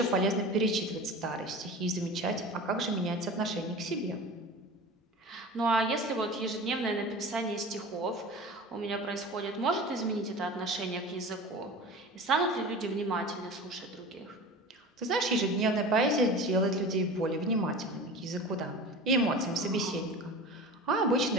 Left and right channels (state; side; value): normal; both; correlation 0.34